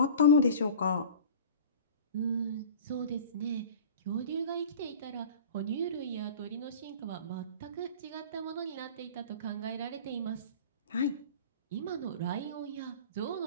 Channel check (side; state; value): both; inverted; correlation -0.38